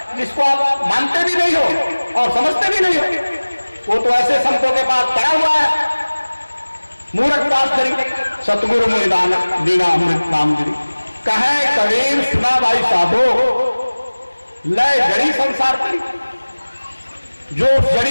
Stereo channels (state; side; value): inverted; both; correlation -1.00